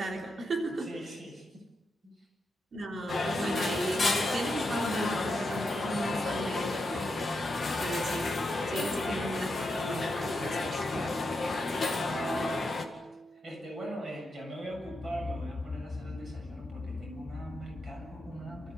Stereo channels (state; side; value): normal; both; correlation 0.85